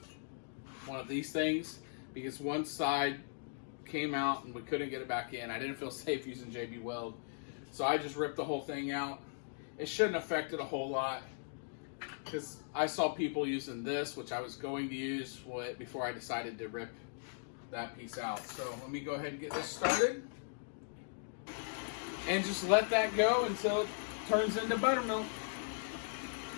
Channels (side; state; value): right; silent; digital silence